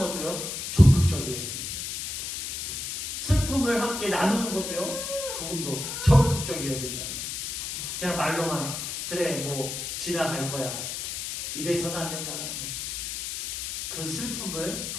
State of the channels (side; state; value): left; noise; hiss, 5 dB below the sound